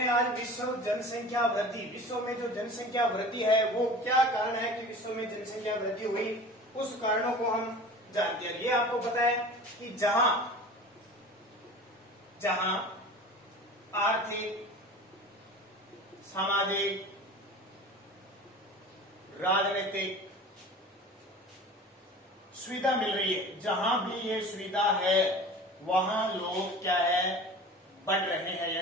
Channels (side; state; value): both; normal; correlation 0.38